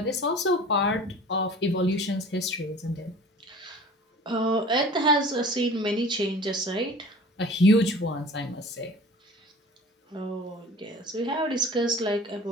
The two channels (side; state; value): both; normal; correlation 0.43